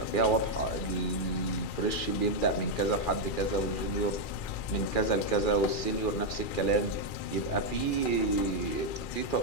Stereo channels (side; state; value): right; late; 2.4 ms